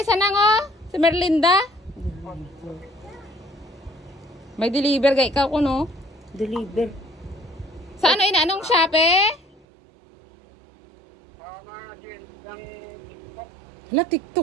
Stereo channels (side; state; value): left; drops out; at 9.7 s